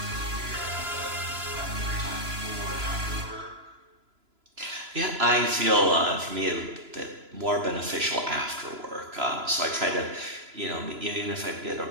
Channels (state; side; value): late; left; 3.0 ms